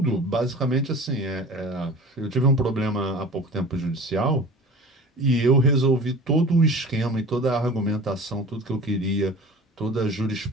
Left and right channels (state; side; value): normal; both; correlation 0.39